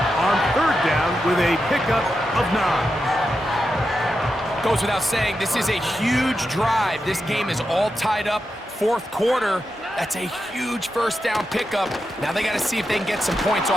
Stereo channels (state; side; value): normal; both; correlation 0.88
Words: on third down with a pickup of 9. Goes without saying, this is a huge drive. This game is all tied up. Fourth quarter, that's a huge first down pickup. Now they got to see if they can get some points